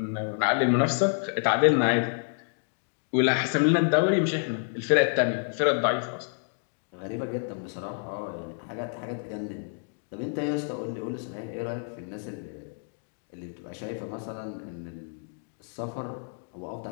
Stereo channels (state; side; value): silent; right; 59 dB below the other